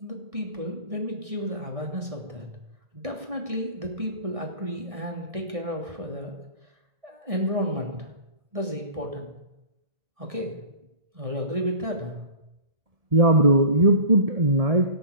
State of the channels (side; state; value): left; late; 1.6 ms